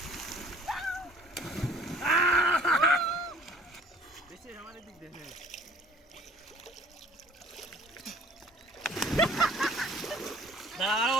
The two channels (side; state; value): both; normal; correlation 0.54